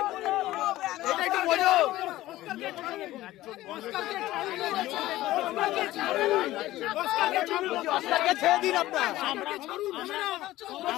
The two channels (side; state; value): right; quieter; 16.0 dB